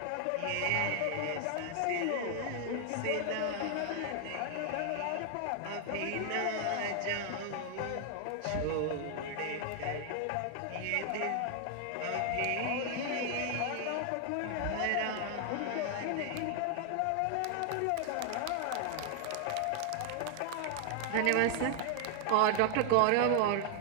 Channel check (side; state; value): both; different; correlation 0.00